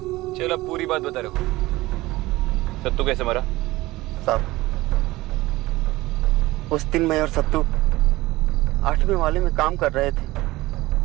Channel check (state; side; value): quieter; left; 19.0 dB